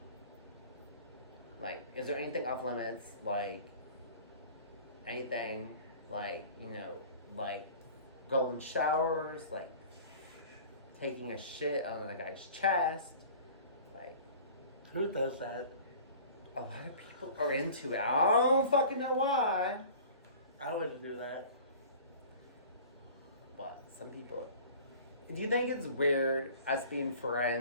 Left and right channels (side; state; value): both; inverted; correlation -0.44